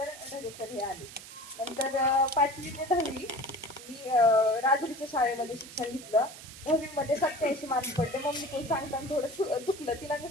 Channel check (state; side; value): noise; right; hiss, 15 dB below the sound